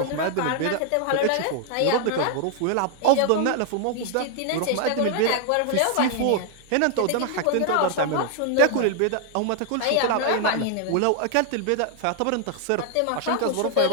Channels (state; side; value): different; both; correlation 0.00